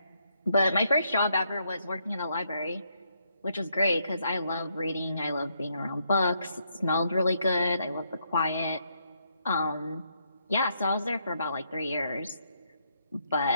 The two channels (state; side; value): inverted; both; correlation -0.76